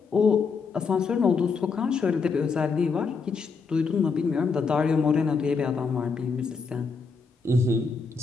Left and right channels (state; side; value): quieter; right; 5.0 dB